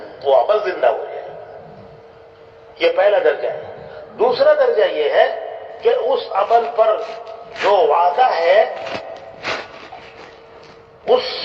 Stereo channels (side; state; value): both; identical; correlation 1.00